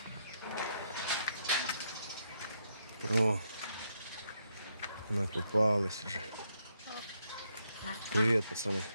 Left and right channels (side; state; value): both; inverted; correlation -0.76